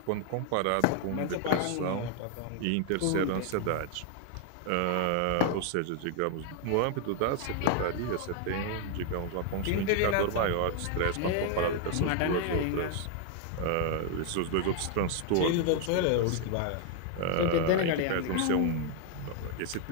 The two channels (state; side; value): different; both; correlation 0.00